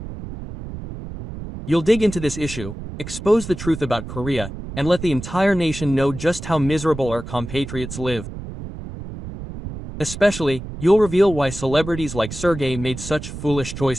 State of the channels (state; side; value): noise; right; rumble, 10 dB below the sound